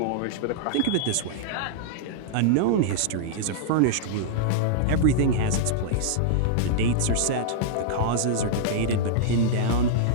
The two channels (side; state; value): both; different; correlation -0.02